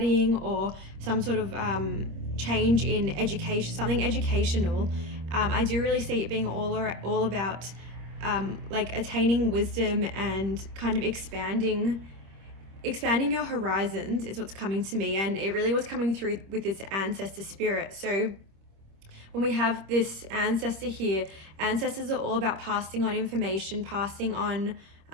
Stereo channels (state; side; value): late; left; 26 ms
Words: or some sort of change in education, something educational. I do really see it being all about attaining wisdom and kind of expanding your horizons is what's coming to me, and it really was coming through with this ancestor spirit. So when we have this ancestor here, ancestors are all about passing on information, passing on